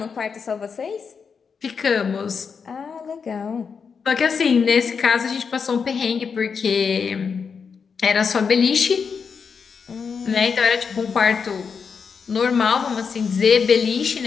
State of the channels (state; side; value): quieter; right; 5.9 dB